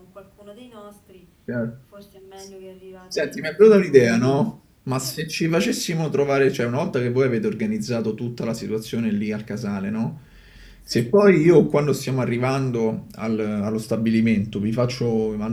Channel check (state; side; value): identical; both; correlation 1.00